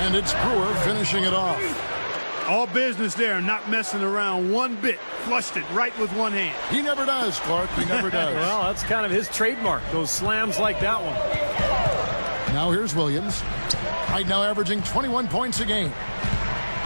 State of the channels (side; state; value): both; inverted; correlation -1.00